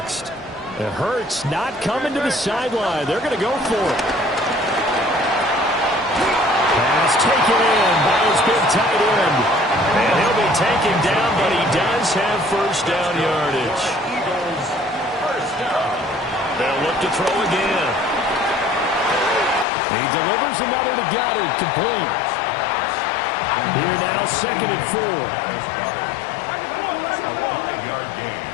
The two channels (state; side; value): drops out; right; at 19.7 s